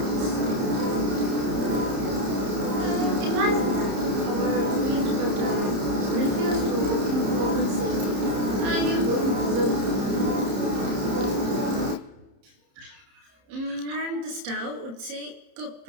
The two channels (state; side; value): late; left; 30 ms